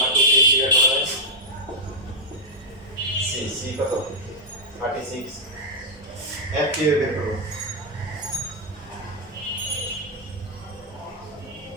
2 তে কি বের করা যায় c কত 36 f কি বের করব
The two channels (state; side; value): normal; both; correlation -0.03